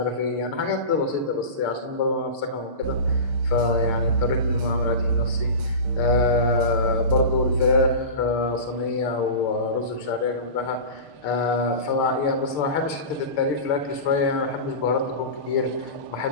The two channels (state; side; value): late; right; 6.7 ms